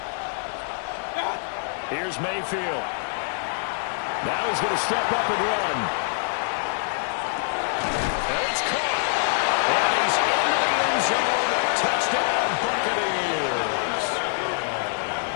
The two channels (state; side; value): silent; right; 62 dB below the other